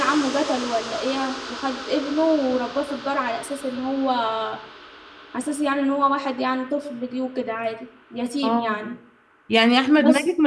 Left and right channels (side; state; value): both; identical; correlation 1.00